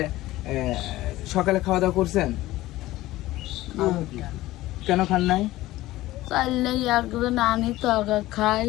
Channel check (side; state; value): right; quieter; 16.9 dB